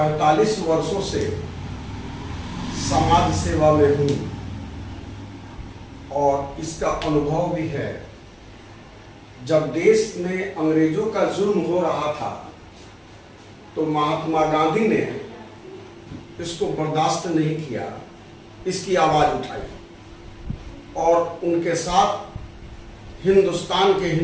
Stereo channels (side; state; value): both; identical; correlation 1.00